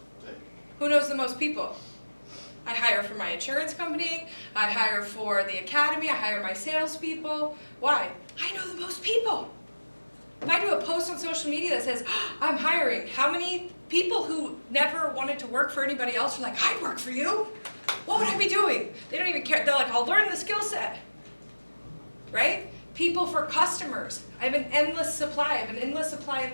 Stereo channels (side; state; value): both; inverted; correlation -1.00